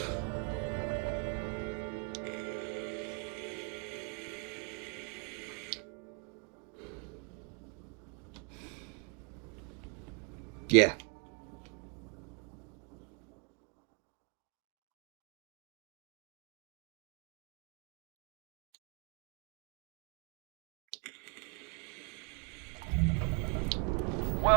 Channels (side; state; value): left; quieter; 34.4 dB